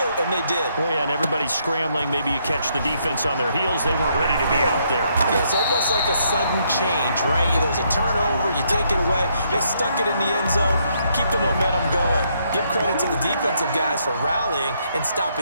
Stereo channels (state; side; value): inverted; both; correlation -0.73